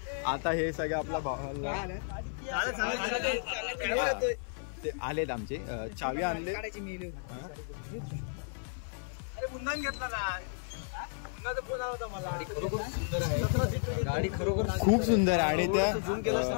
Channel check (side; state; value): right; silent; 56 dB below the other